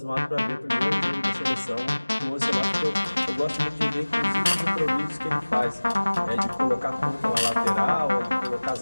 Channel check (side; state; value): both; inverted; correlation -1.00